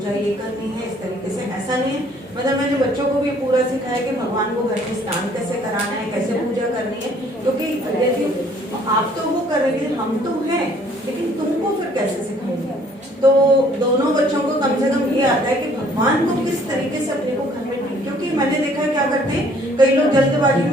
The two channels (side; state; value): both; normal; correlation 0.59